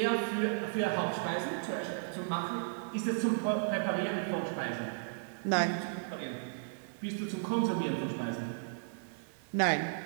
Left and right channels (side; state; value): left; silent; digital silence